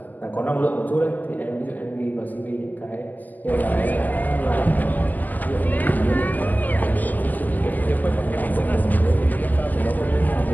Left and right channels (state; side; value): late; right; 0.083 ms